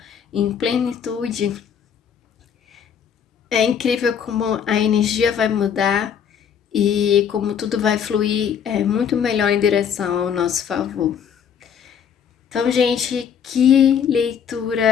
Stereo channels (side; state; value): right; quieter; 7.9 dB